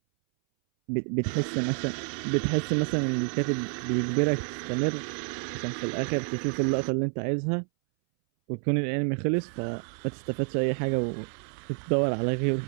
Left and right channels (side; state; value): left; silent; 59 dB below the other